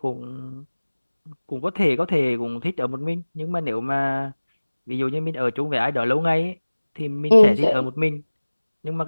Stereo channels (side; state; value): both; inverted; correlation -1.00